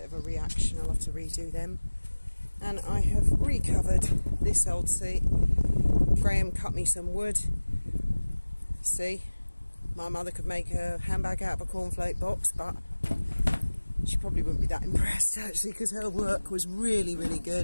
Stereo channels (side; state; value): both; inverted; correlation -1.00